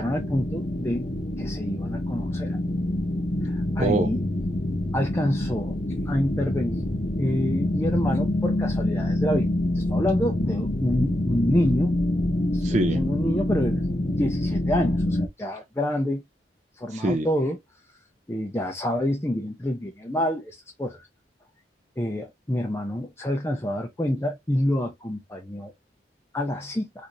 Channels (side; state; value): both; normal; correlation 0.84